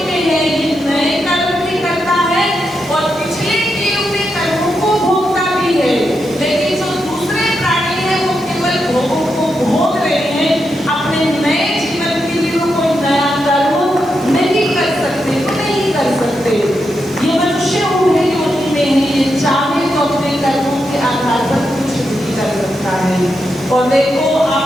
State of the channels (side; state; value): right; noise; hiss, 26 dB below the sound